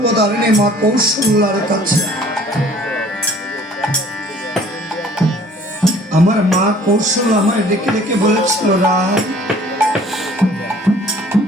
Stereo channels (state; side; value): normal; both; correlation 0.53